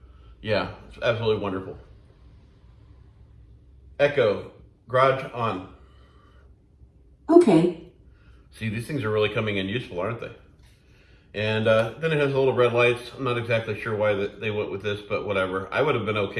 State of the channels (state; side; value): identical; both; correlation 1.00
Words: Yeah, it's absolutely wonderful. Echo, garage on. Okay. See, these things are really coming in useful, aren't they? And then it has the little red lights. I'm not exactly sure why they went with this, but whatever. I would have been